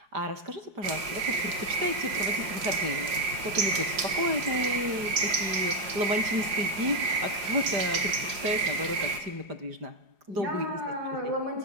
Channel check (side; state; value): left; late; 4.8 ms